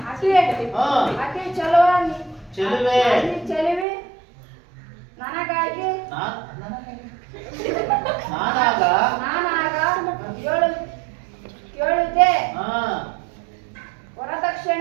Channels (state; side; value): drops out; left; at 3.9 s